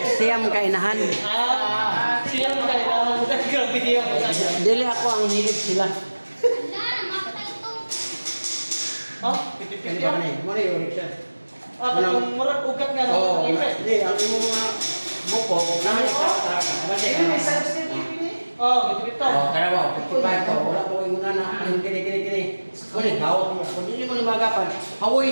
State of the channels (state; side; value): inverted; both; correlation -1.00